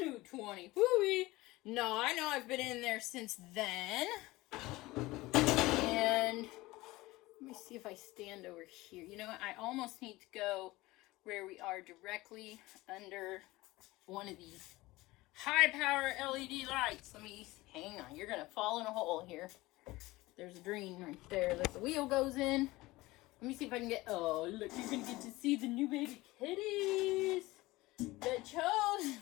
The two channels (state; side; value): quieter; right; 19.8 dB